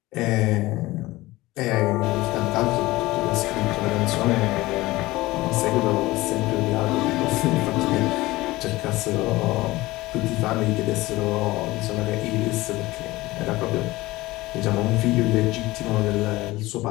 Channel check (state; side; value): quieter; right; 19.1 dB